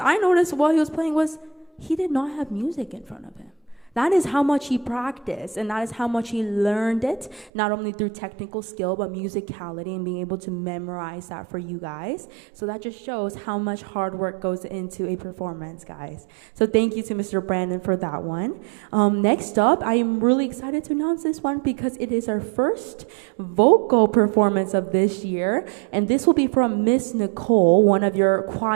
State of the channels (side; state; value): left; drops out; at 7.5 s